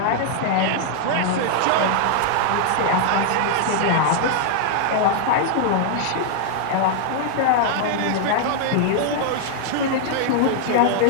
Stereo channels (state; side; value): different; both; correlation -0.01